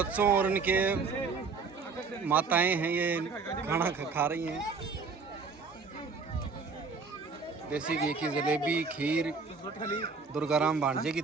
और उनके माताएं हैं, ये खाना खा रही हैं। देसी घी की जलेबी, खीर दुर्गाराम भांजे की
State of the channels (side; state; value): left; quieter; 4.7 dB